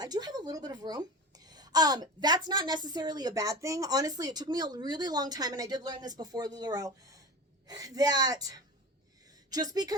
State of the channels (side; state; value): both; normal; correlation 0.30